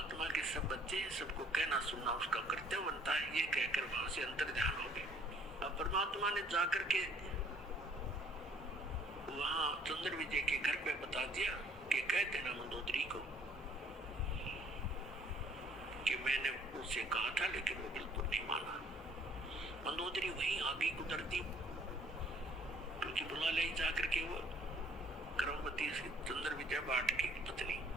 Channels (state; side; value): normal; both; correlation 0.60